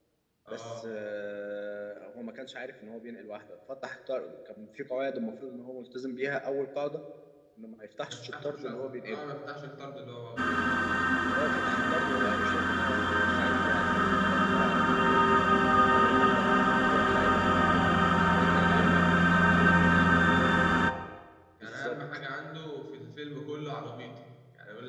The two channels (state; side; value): identical; both; correlation 1.00